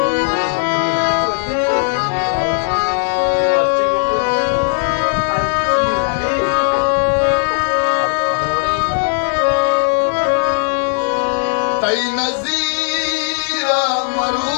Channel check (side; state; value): right; silent; digital silence